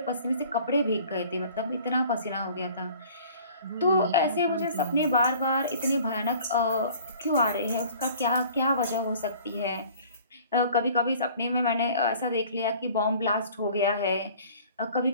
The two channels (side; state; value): both; inverted; correlation -0.49